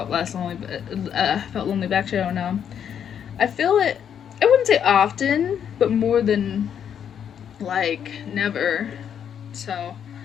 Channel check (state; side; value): quieter; right; 8.6 dB